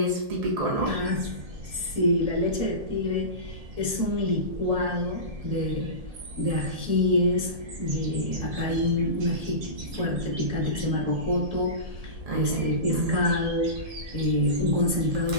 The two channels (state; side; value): late; left; 1.7 ms